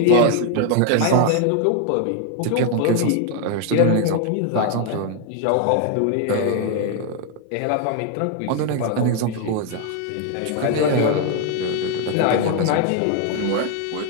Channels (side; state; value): both; different; correlation 0.01